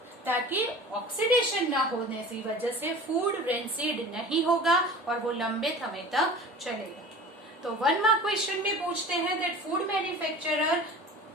ताकि ऑक्सीडेशन ना होने की वजह से फूड रेंसिड नहीं होगा और वो लंबे समय तक चलेगा। तो 1 मार्क क्वेश्चन में पूछते हैं that food manufacturer,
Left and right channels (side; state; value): both; normal; correlation 0.39